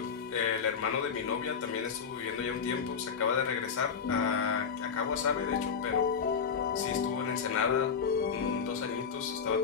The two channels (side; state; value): right; quieter; 6.3 dB